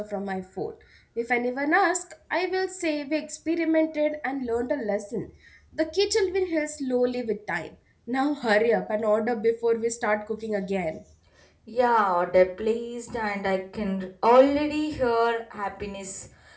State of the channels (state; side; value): identical; both; correlation 1.00